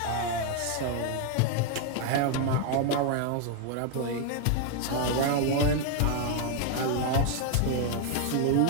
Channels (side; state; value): both; different; correlation 0.00